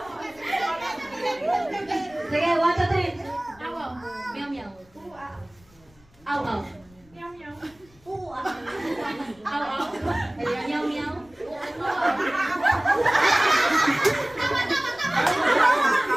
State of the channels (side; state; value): left; noise; rumble, 28 dB below the sound